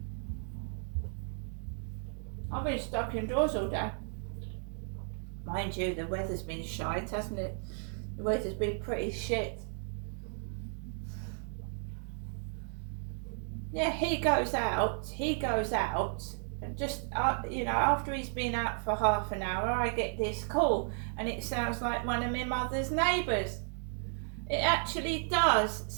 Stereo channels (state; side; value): silent; left; 55 dB below the other